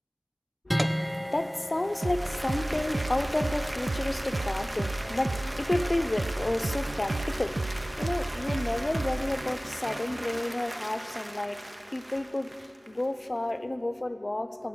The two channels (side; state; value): both; normal; correlation 0.98